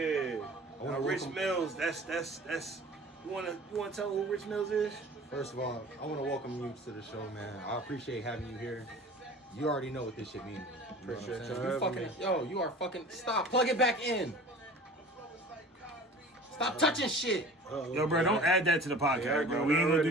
Now, Rich welcome- Millz, that's. You wanna tell who Rich Millz is? First of all, I want to welcome you to the show, man. I appreciate having you here. You already know what this shit means. You know what I'm Appreciate saying? y'all You having fucking, you are fucking, stop, plug it back in. Stop touching shit. Uh-oh. Yo, bro, don't add that to the podcast, Yeah, bro. I We ain't gonna already-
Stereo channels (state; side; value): normal; both; correlation 0.42